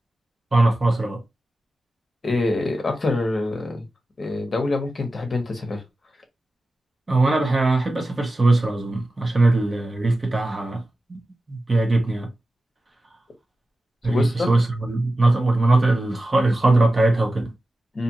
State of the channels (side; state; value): both; normal; correlation 0.94